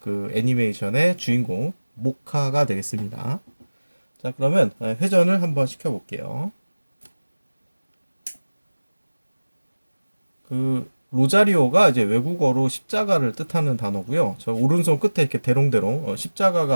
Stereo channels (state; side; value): inverted; both; correlation -1.00